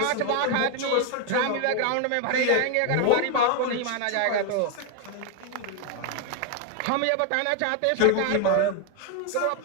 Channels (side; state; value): both; different; correlation 0.01